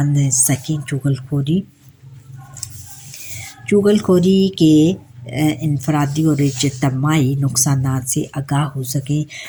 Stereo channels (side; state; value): both; identical; correlation 1.00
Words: सकें। चुगलखोरी के इनफरादी और इज्तिमाई नुकसानात से आगाह हो सकें,